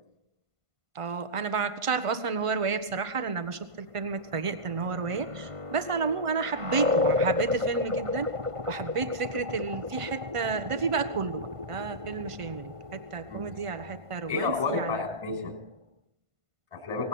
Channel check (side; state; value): left; late; 1.5 ms